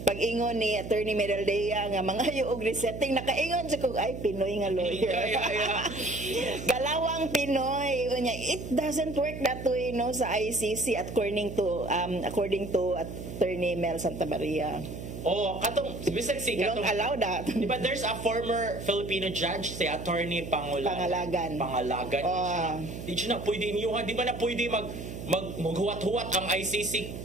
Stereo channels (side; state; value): right; noise; hum, 9 dB below the sound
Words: pag-ingon ni Attorney Midaldea nga mga og resetting, nakaingon sa kog ay Pinoy nga lawyer. Galawang Pinoy unya, it doesn't work that way no sa ICC according to Attorney Mel Santa Maria. Oh, katong bisag si katong don't allow that. Di ba there's a former Filipino judge, si Attorney Pangalagan. Di siya na pwede niyo, di ba na pwede maghuwat-huwat ang ICC